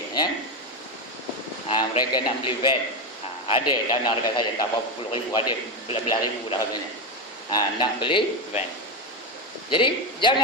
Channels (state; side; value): normal; both; correlation 0.12